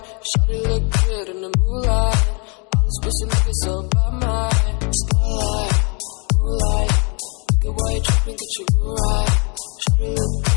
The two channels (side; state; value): right; quieter; 34.1 dB